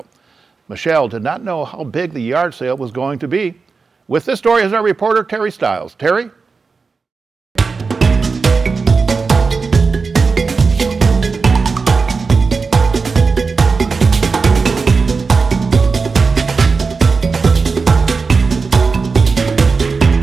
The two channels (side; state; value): left; quieter; 4.6 dB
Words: Michelle did not know how big the yard sale was going to be. With this story is our reporter, Teri Stiles. Teri?